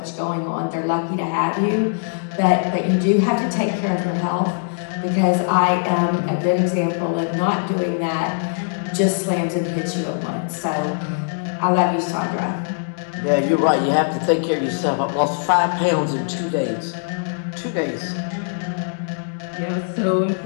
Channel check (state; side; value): silent; right; digital silence